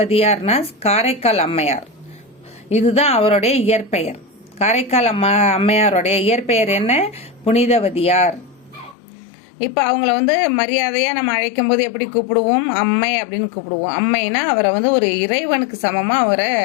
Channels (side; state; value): right; drops out; at 9.0 s